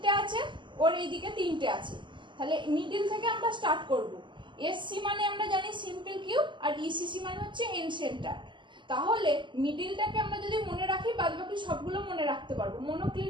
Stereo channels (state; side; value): late; left; 0.23 ms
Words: আছে, ওর এই দিকে 3টে আছে। তাহলে মিডিল থেকে আমরা স্টার্ট করব। এসসি মানে আমরা জানি সিম্পল কিউব, আর ইসিসি মানে হচ্ছে এন সেন্টার। তাহলে মিডিলটাকে আমরা যদি মনে রাখি, বাদ বাকি সবগুলো মনে রাখতে পারবো।